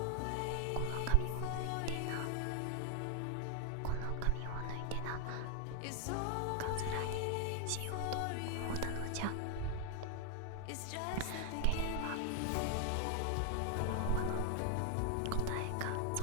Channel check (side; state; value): both; different; correlation 0.00